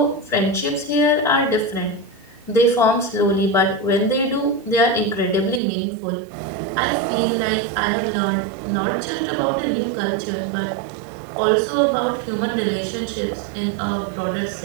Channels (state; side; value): drops out; left; at 5.6 s